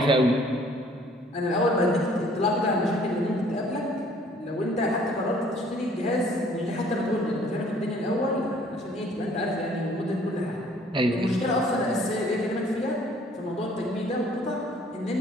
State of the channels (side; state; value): both; normal; correlation 0.57